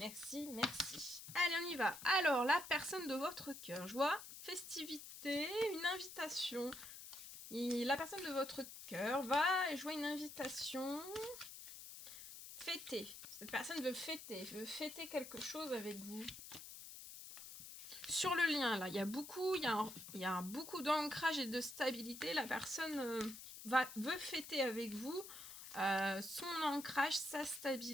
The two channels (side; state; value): left; noise; hiss, 12 dB below the sound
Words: on y va. Alors, la personne de votre cœur. Je vois festivité, une invitation. Et la personne de votre cœur va jouer une invitation. Fêter. Cette personne veut fêter quelque chose avec vous. Sur le lien, là, il y a beaucoup d'ancrage et de stabilité. La personne veut fêter avec vous son ancrage, sa